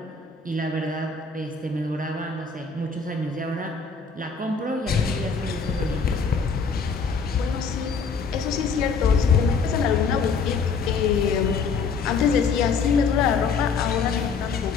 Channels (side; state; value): right; quieter; 5.2 dB